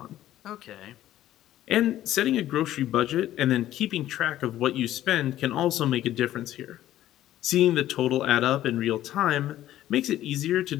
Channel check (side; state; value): right; quieter; 13.3 dB